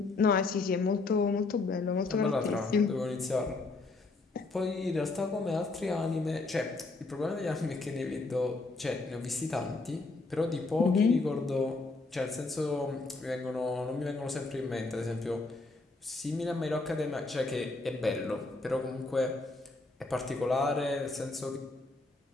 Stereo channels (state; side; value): quieter; right; 3.5 dB